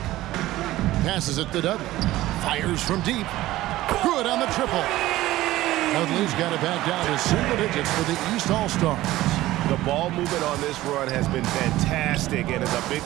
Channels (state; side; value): quieter; left; 16.2 dB